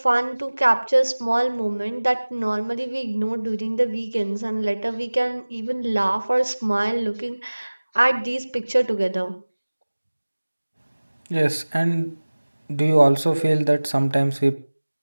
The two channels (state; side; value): inverted; both; correlation -1.00